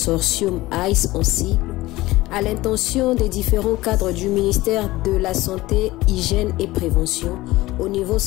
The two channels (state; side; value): quieter; right; 18.5 dB